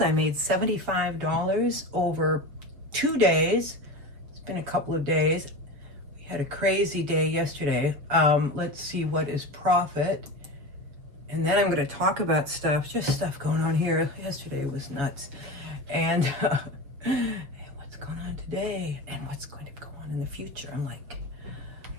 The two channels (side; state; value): left; late; 6.8 ms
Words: I made $75 over 2 days. It's been a couple of days. We had a crazy day yesterday. Let's see what is profit. And then I'm going to talk about stuff, just stuff going on here. Yesterday was nuts. And what's going on today and what's going to go on in the future. I'm going to